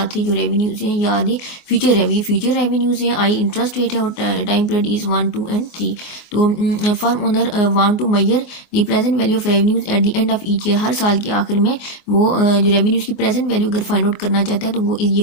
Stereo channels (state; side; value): late; right; 23 ms